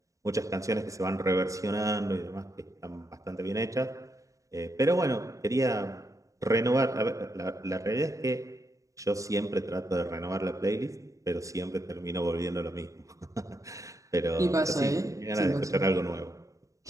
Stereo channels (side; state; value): left; late; 0.16 ms